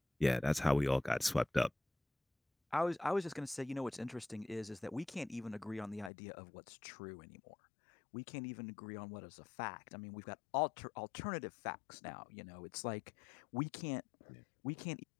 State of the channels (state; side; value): drops out; right; at 6.1 s